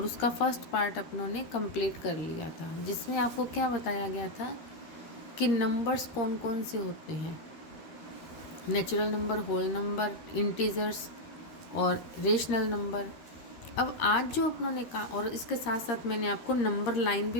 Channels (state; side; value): late; right; 13 ms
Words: उसका फर्स्ट पार्ट अपनों ने कंप्लीट कर लिया था, जिसमें आपको क्या बताया गया था कि नंबर्स कौन कौन से होते हैं। Natural number, whole number, integers और रेशनल नंबर। अब आज जो अपनों ने कहा, और इसके साथ साथ मैंने आपको नंबर लाइन